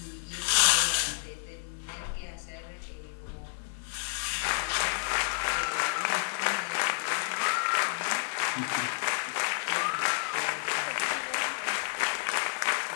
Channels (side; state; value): right; silent; digital silence